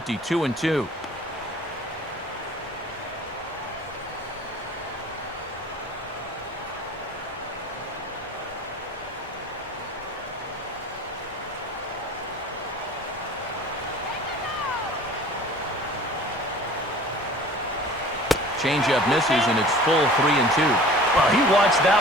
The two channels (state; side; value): normal; both; correlation 0.45